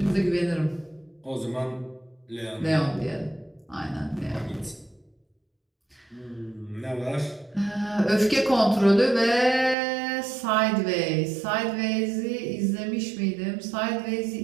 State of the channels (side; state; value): left; drops out; at 9.8 s